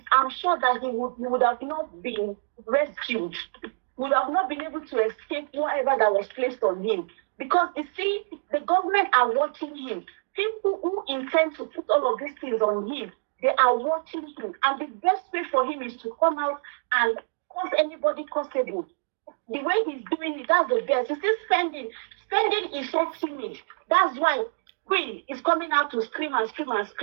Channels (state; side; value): silent; left; digital silence